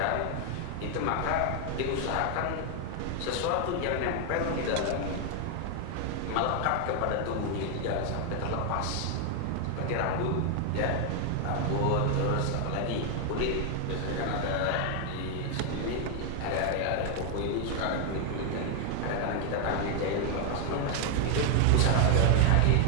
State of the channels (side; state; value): both; different; correlation 0.00